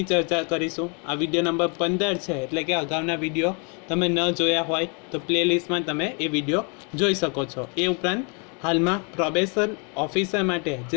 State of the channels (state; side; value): quieter; right; 36.0 dB